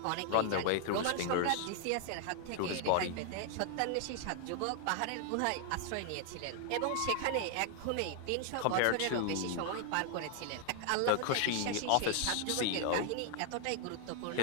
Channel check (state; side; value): different; both; correlation 0.00